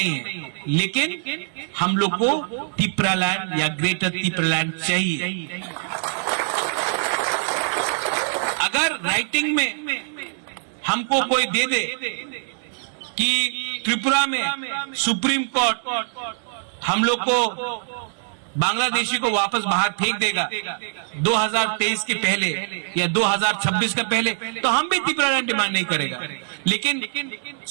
है। लेकिन हम लोग को तिप्रालैंड या ग्रेटर तिप्रालैंड चाहिए। अगर राइटिंग में हमको कोई दे दे कि त्रिपुरा में सुप्रीम कोर्ट हम लोग को बांग्लादेशी को वापस बाहर फेंक देगा 2023 के पहले या 2026 के पहले, तो हम भी तिप्रालैंड डिमांड नहीं करेगा। लेकिन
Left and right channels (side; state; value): left; silent; 63 dB below the other